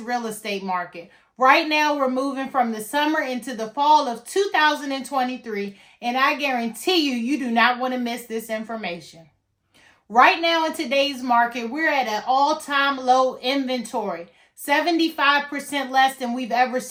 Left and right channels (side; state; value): both; identical; correlation 1.00